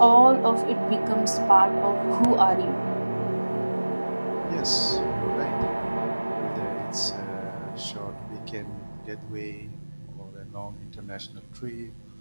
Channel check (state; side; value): inverted; both; correlation -1.00